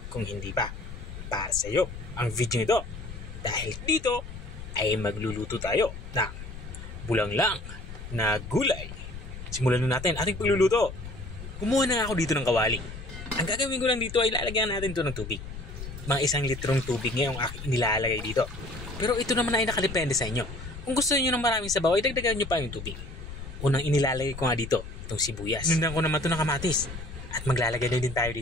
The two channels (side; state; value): left; noise; rumble, 11 dB below the sound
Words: Kung hindi pa, para sa iyo ang video nito. Dahil dito ay magluluto tayo ng bulanglang na gulay. Simulan na natin ating pagluluto. Kumuha na ako dito ng kawali. Ang gagawin ko lang dito ay lalagyan natin ito ng tubig. Mga 1 litrong tubig ngayong aking nilalagay dito. Pero ito naman ay nakadepende sa inyo. Kung gusto niyo ng maraming sabaw, ay dagdagan nyo pa yung tubig. Unang inilalagay ko nga dito, itong sibuyas. Nundan ko naman ito ng kamatis. At maglalagay na din tayo